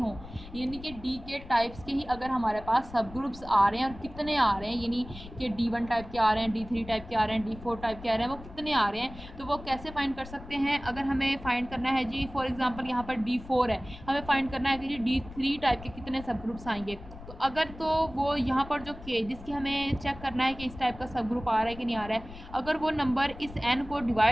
यानी कि DK टाइप्स के ही अगर हमारे पास सब ग्रुप्स आ रहे हैं, और कितने आ रहे हैं, यानी कि D1 टाइप के आ रहे हैं, D3 टाइप के आ रहे हैं, D4 टाइप के आ रहे हैं, वो कितने आ रहे हैं, तो वो कैसे फाइंड कर सकते हैं? अगर हमें फाइंड करना है जी, फॉर एग्जांपल यहाँ पर D4 है, हमें फाइंड करना है कि जी D3 टाइप के कितने सब ग्रुप्स आएंगे, तो अगर तो वो यहाँ पर जो K जिसकी हमें चेक करना है कि इस टाइप का सब ग्रुप आ रहा है कि नहीं आ रहा है, अगर वो नंबर इस n को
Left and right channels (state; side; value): noise; left; rumble, 15 dB below the sound